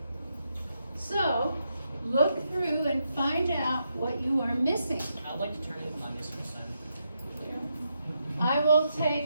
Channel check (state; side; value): inverted; both; correlation -0.82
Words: So, look through and find out what you are missing. I'd like to turn in my missing assignment. I will